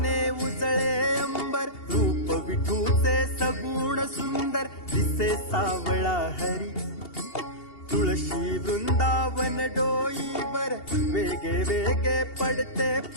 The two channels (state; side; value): late; right; 2.8 ms